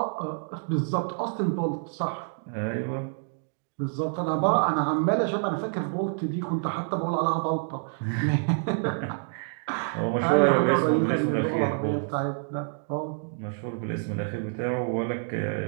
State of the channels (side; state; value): left; silent; digital silence